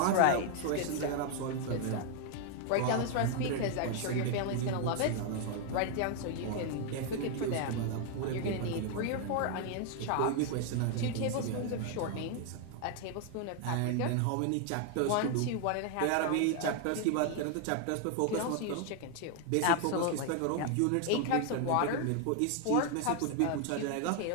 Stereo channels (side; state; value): both; different; correlation 0.00